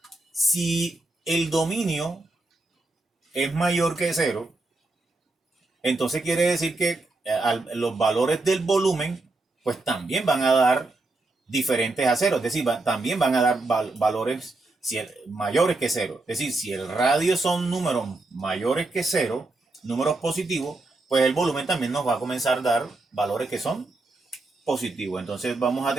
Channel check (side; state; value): left; quieter; 3.1 dB